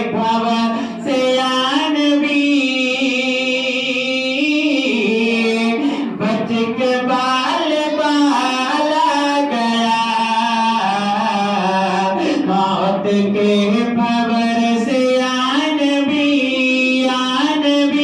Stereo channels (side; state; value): both; identical; correlation 1.00